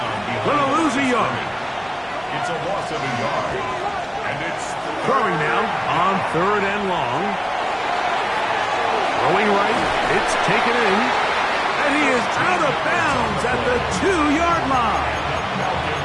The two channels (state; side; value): identical; both; correlation 1.00